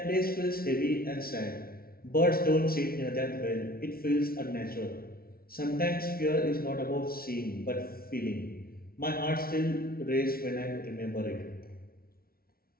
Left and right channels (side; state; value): right; late; 0.44 ms